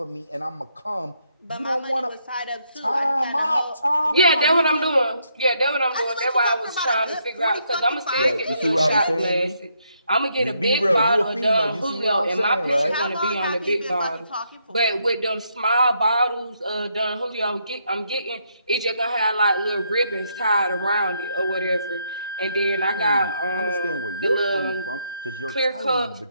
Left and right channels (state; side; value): inverted; both; correlation -0.75